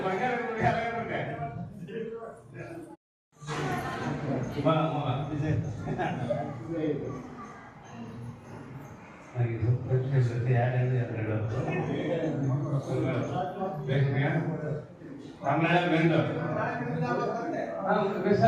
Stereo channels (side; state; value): both; identical; correlation 1.00